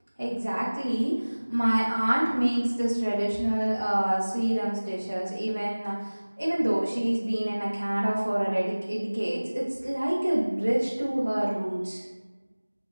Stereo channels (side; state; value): both; inverted; correlation -1.00